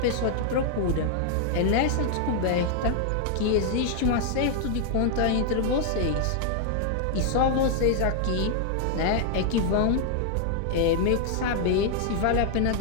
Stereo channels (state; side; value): different; both; correlation 0.00